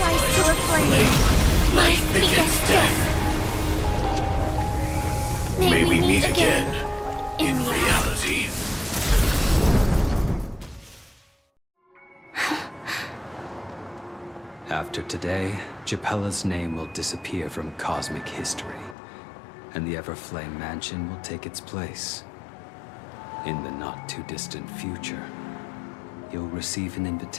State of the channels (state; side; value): drops out; right; at 18.9 s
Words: to a flame, life begets death. May we meet again in reality. After today, Japella's name will disappear from cosmic history, and the Everflame Mansion will take its place. In the not-too-distant future, you'll receive an